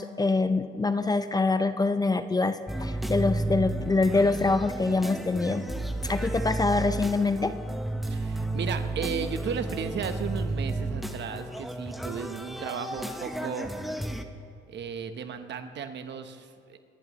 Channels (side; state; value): both; normal; correlation 0.77